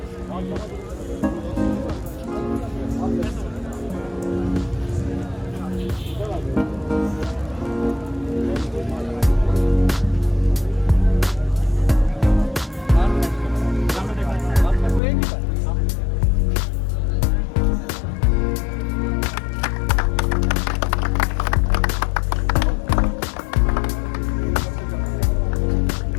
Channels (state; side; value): drops out; right; at 15.0 s